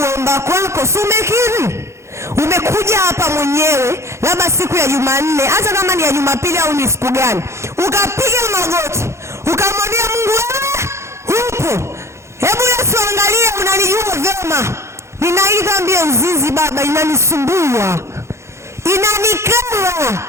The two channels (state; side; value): late; left; 0.13 ms